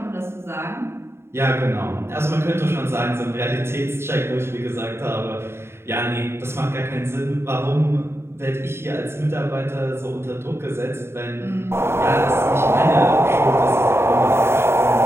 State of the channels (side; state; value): left; late; 0.12 ms